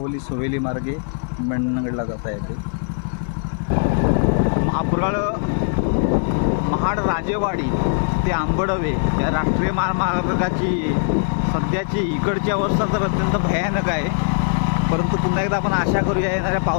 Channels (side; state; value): right; silent; 65 dB below the other